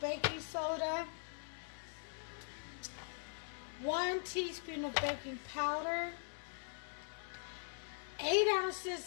soda, 1 teaspoon of baking powder, 8 ounces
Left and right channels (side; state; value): right; silent; digital silence